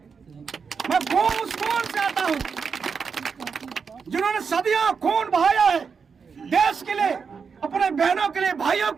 मैं उस कौन से आता हूँ जिन्होंने सदियों खून बहाया है देश के लिए, अपने बहनों के लिए, भाइयों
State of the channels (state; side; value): quieter; left; 5.8 dB